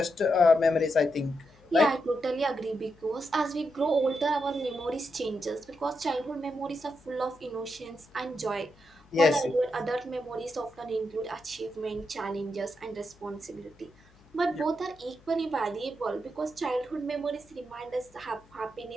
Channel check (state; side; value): noise; left; hum, 28 dB below the sound